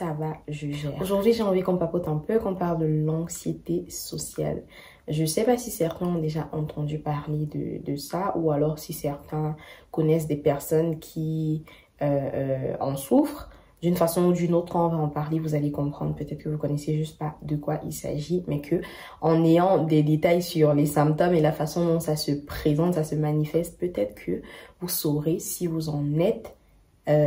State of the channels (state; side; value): identical; both; correlation 1.00